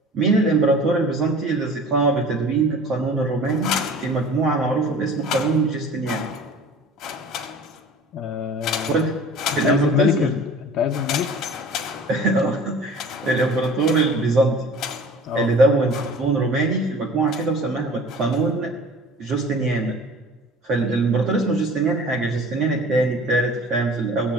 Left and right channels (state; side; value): normal; both; correlation 0.44